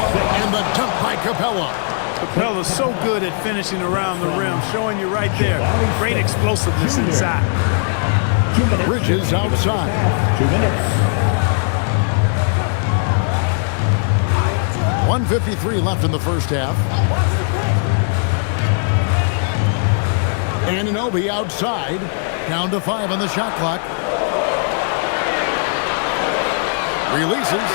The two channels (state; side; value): silent; right; 67 dB below the other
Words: and the dunk by Capella. Capella's so good at finishing around the rim, showing you right there. Great explosiveness inside. Bridges outside. 2 minutes. 1:53 left in the first half. Anunoby outside, down to 5 on the shot clock. Releases.